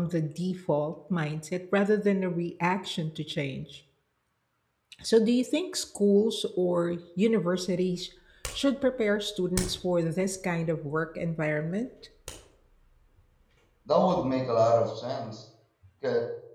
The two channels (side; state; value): both; identical; correlation 1.00